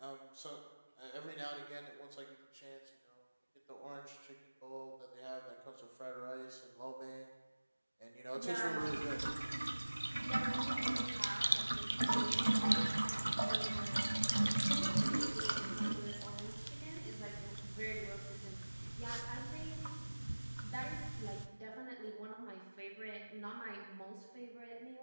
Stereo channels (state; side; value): inverted; both; correlation -1.00